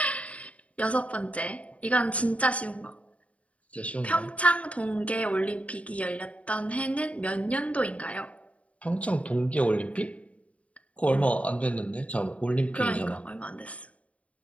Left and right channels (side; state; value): right; late; 0.065 ms